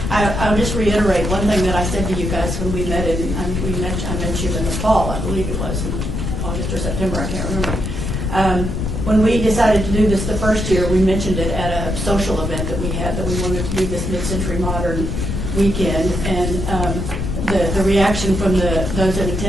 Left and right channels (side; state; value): left; noise; rumble, 3 dB below the sound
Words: I'll just reiterate one thing that I said to you guys when we met I met you in the fall, I believe it was in August or September, I can't remember. When we decided to do this the first year, we mentioned it at a social event that we had, that we wanted to do this mid-century modern weekend, and the reaction from those in